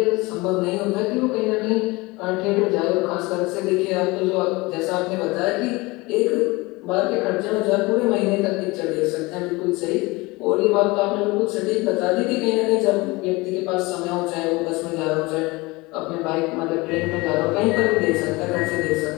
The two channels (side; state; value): right; quieter; 23.3 dB